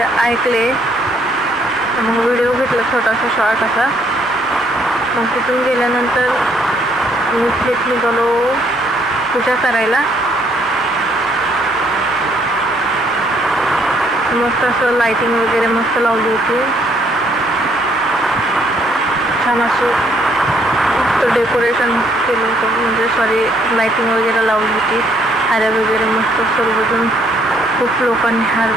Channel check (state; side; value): normal; both; correlation 0.68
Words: ऐकले. मग व्हिडिओ घेतला छोटासा शॉर्ट असा. मग तिथून गेल्यानंतर नीट निघालो पूजा करायला. मस्त असं लाइटिंग वगैरे मस्त लावली होती. छान असं मस्त डेकोरेशन केलं होतं, म्हणजे लाइटिंग वगैरे लावली होती. हार वगैरे मस्त सर्वजण खूप लोकांनी हार